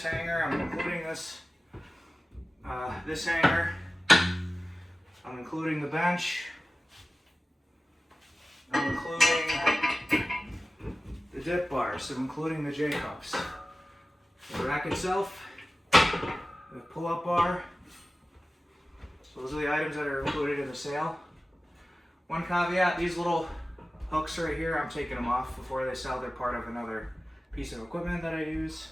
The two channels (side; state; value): both; normal; correlation 0.95